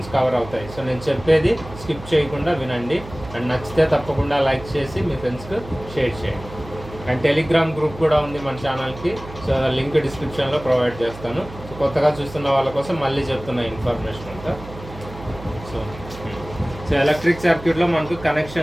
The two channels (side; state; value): right; noise; hum, 15 dB below the sound